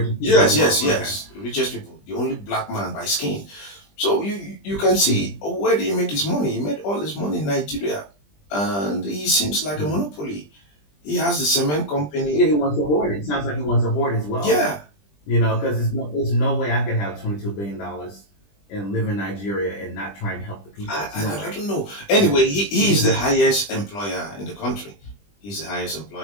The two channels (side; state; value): right; late; 20 ms